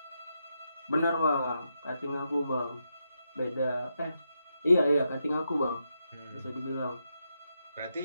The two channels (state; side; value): inverted; both; correlation -0.84